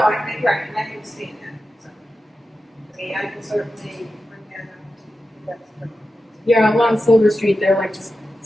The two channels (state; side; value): normal; both; correlation 0.92